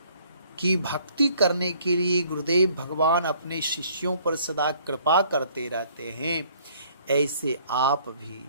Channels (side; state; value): both; inverted; correlation -0.60